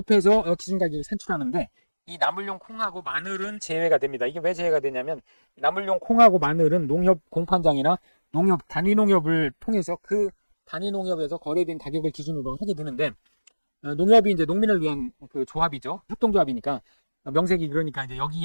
기준 가격을 산출하는데, 이 나물용 콩하고 마늘은 제외가 됩니다. 이게 왜 제외가 되냐면, 나물용 콩하고 마늘은 농협 공판장이나 농협 단위 농협을 통해서 그 단위 농협에서 거래된 가격을 기준으로 하게 되는데, 농협이 이제 농민을 위한 그 조합이죠. 협동조합이니까 명색이 그러니까 이제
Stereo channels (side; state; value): both; inverted; correlation -1.00